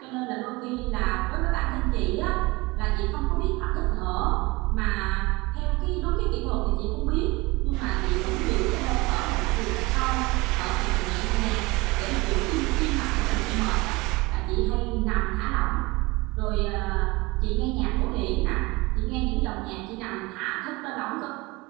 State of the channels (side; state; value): left; quieter; 23.3 dB